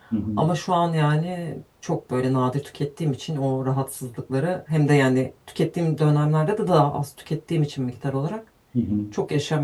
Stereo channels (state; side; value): identical; both; correlation 1.00